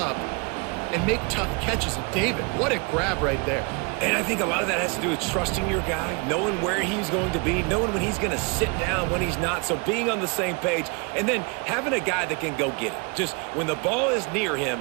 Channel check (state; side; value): quieter; left; 31.3 dB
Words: and make tough catches. And David, what a grab right there. And I think a lot of that has to do with trusting your guy, knowing where he's going to be, knowing when he's going to sit down, when he's not. So being on the same page, and then having a guy that can go get it. Just when the ball is near him,